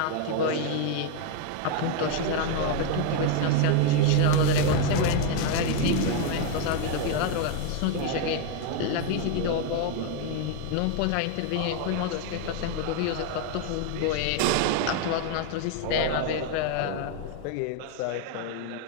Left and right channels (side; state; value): both; different; correlation 0.01